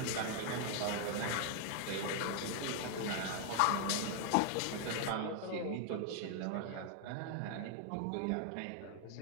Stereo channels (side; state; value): both; different; correlation 0.00